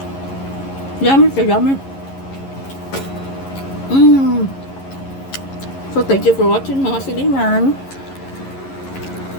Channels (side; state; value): right; late; 11 ms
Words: Yummy siya, yummy. So, thank you for watching mga silingan.